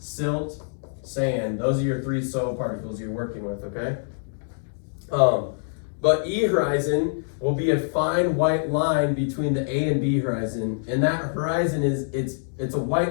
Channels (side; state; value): right; silent; digital silence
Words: sand. Those are your 3 soil particles you're working with, okay? But E horizon will be a fine white line between the A and B horizon. And that horizon it's a